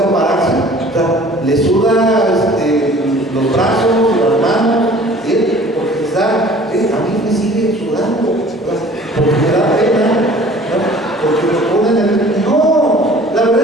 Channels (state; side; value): normal; both; correlation 0.49